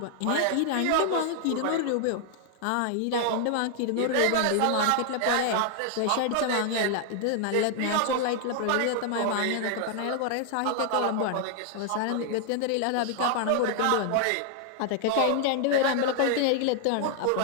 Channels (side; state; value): both; different; correlation 0.00